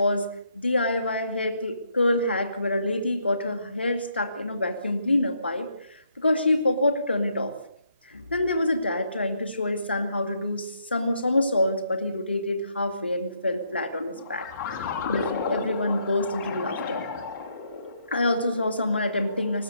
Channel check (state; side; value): inverted; both; correlation -0.74